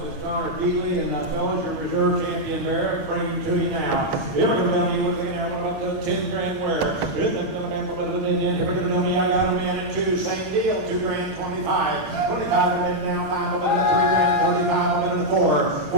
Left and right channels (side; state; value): left; late; 8.7 ms